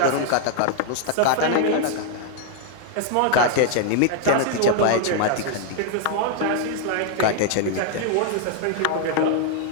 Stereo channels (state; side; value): different; both; correlation 0.00